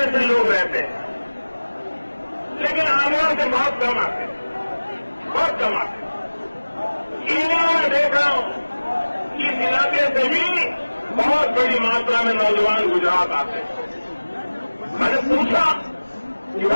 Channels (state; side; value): inverted; both; correlation -1.00